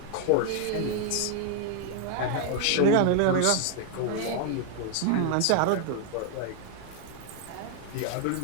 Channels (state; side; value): different; both; correlation 0.00